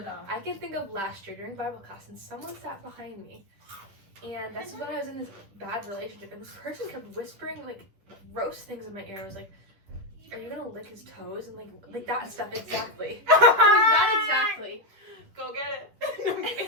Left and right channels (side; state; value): left; late; 10 ms